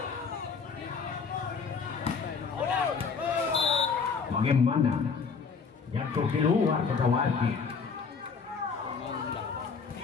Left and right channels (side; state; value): right; quieter; 5.5 dB